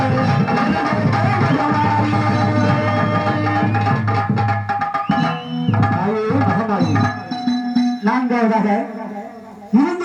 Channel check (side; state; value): both; identical; correlation 1.00